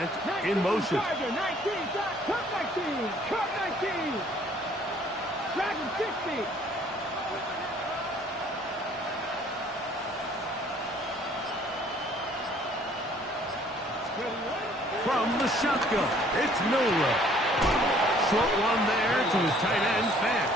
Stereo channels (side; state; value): both; normal; correlation 0.58